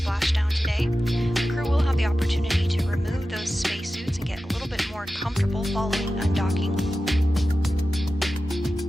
today. The crew will have the opportunity to remove those spacesuits and get a little bit more comfortable following undocking.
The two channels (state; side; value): normal; both; correlation 0.94